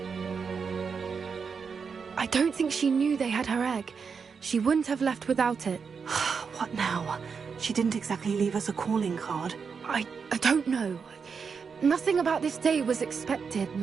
I don't think she knew they had her egg. She wouldn't have left without it. What now? She didn't exactly leave us a calling card. I don't know. Nothing about this day was expected.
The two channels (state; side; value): quieter; left; 5.8 dB